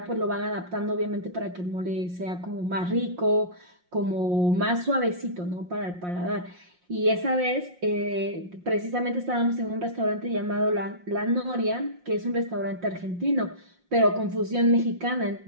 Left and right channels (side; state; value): left; late; 5.6 ms